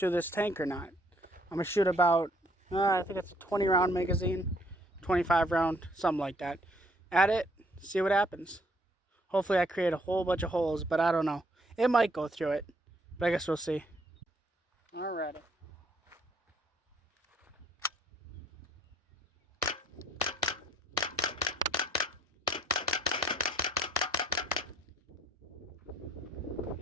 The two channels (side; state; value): both; normal; correlation 0.65